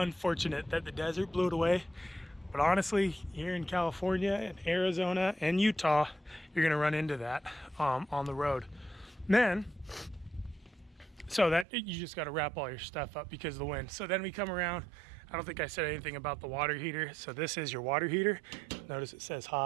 that the desert blew it away, but honestly, here in California and Arizona and Utah, you're gonna run into that on the road. Then, so that you just got to wrap all your stuff up because of the wind. So then we come around. I don't think I said anything about the water heater. So this is your water heater. Notice it says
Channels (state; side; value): drops out; left; at 11.7 s